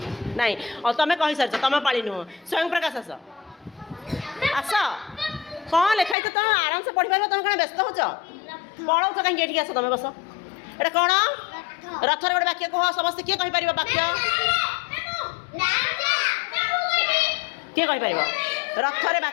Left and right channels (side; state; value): right; drops out; at 6.2 s